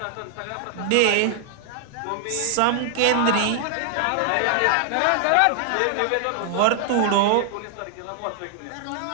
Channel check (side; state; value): both; different; correlation 0.00